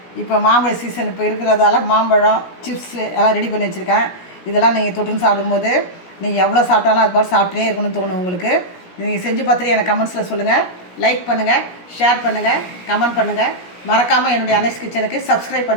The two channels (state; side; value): late; right; 17 ms